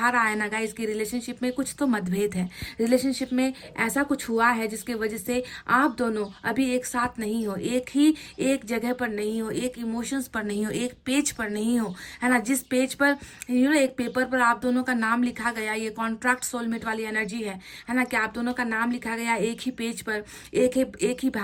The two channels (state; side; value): identical; both; correlation 1.00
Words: रहा है ना गाइस कि रिलेशनशिप में कुछ तो मतभेद है, रिलेशनशिप में ऐसा कुछ हुआ है जिसके वजह से आप दोनों अभी एक साथ नहीं हो, एक जगह पर नहीं हो, एक इमोशंस पर नहीं हो, एक पेज पर नहीं हो, है ना, जिस पेज पर एक पेपर पर आप दोनों का नाम लिखा गया, ये कॉन्ट्रैक्ट सोलमेट वाली एनर्जी है ना, कि आप दोनों का नाम लिखा गया एक ही पेज पर, एक ही